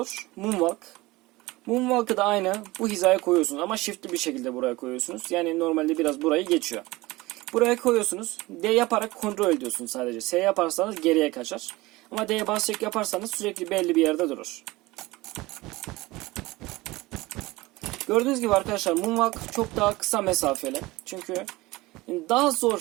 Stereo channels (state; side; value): quieter; left; 20.5 dB